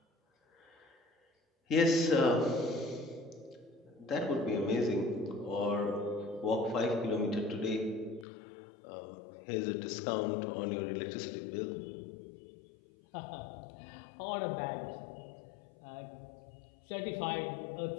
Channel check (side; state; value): right; drops out; at 8.2 s